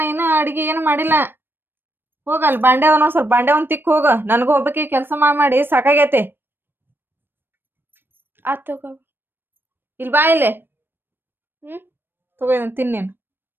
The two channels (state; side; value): late; left; 0.098 ms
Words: ಇನ್ನೂ ಅಡಿಗೆ ಏನು ಮಾಡಿಲ್ಲ. ಹೋಗಲ್ ಬಾಂಡೆ ಅವನ ಸ್ವಲ್ಪ ಬಾಂಡೆ ಒಂದ್ ತಿಕ್ ಹೋಗ. ನನಗೂ ಒಬ್ಬಕ್ಕೆ ಕೆಲಸ ಮಾಡಿ ಸಾಕಾಗೈತಿ. ಆತ್ ತಗೋ. ಇಲ್ಲಿ ಬಾ ಇಲ್ಲಿ. ಹ್ಮ್ ತಗೋ ಇದನ್ನ ತಿನ್ನೇನು.